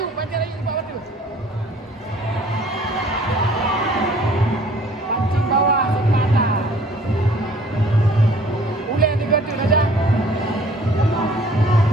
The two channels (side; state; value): both; normal; correlation 0.54